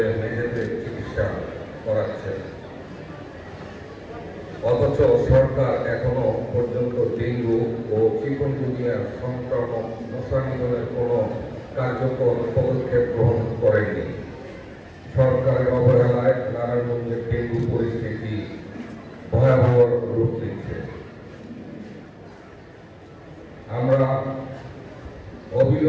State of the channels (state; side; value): identical; both; correlation 1.00